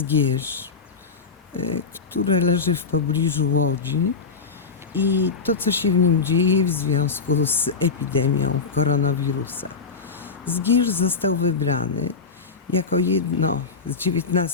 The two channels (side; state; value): right; quieter; 5.0 dB